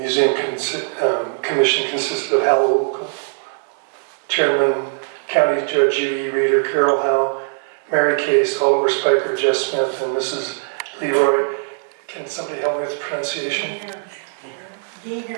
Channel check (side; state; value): left; silent; digital silence